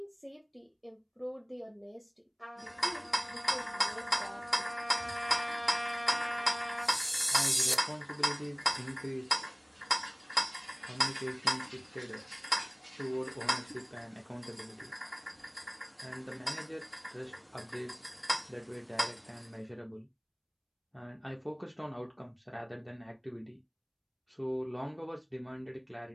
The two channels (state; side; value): identical; both; correlation 1.00